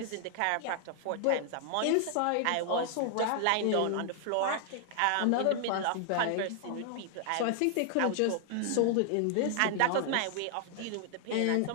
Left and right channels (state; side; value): different; both; correlation 0.00